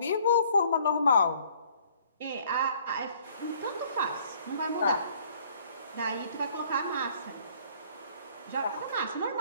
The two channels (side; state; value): both; inverted; correlation -0.58